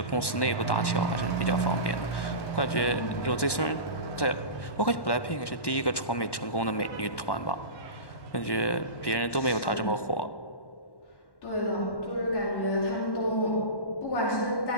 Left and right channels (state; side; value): late; right; 1.1 ms